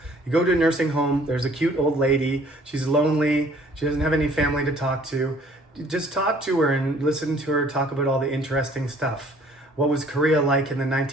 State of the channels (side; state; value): both; normal; correlation 0.57